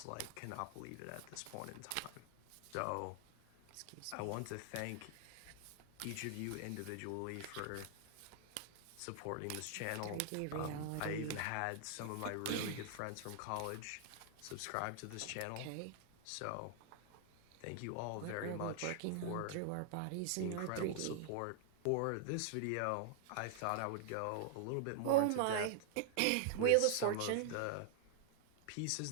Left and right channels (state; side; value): different; both; correlation 0.00